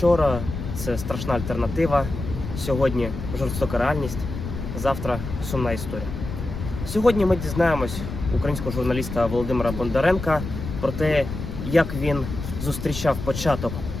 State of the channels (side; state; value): left; noise; rumble, 7 dB below the sound